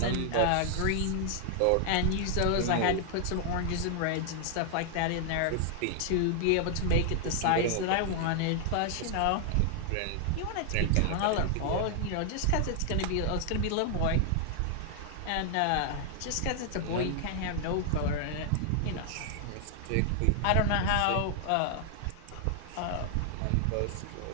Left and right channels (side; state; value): both; different; correlation 0.00